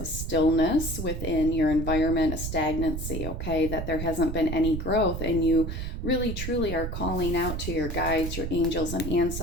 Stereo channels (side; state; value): right; noise; rumble, 5 dB below the sound